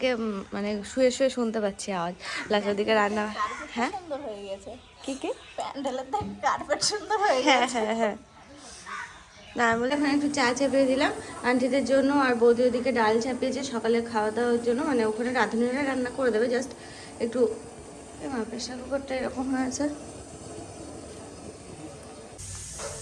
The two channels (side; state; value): both; identical; correlation 1.00